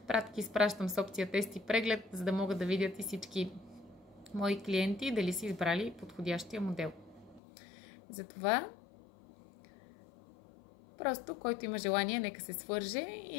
пратки изпращам с опция тест и преглед, за да могат да видят и всички мои клиенти дали са избрали подходящия модел. Затова просто който има желание, нека се свърже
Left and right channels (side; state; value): right; drops out; at 7.4 s